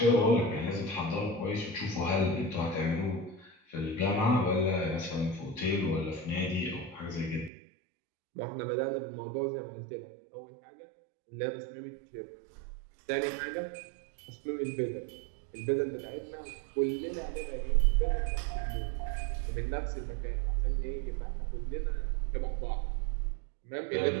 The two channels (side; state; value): left; drops out; at 7.5 s